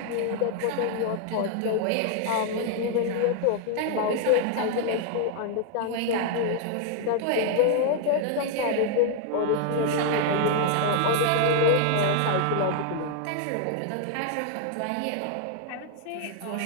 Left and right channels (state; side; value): different; both; correlation 0.00